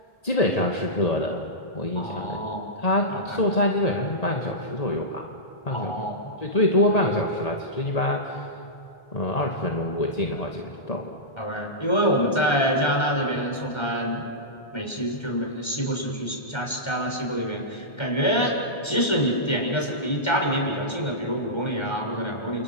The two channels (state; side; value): late; right; 1.3 ms